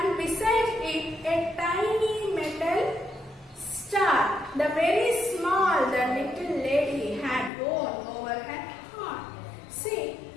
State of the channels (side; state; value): right; drops out; at 7.5 s